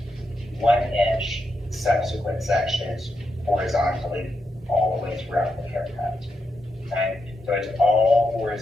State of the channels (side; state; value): both; normal; correlation 0.84